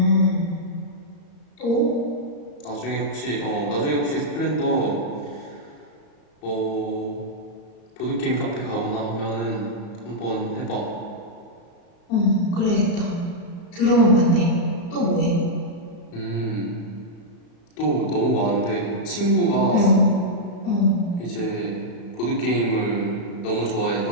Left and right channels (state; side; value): late; right; 34 ms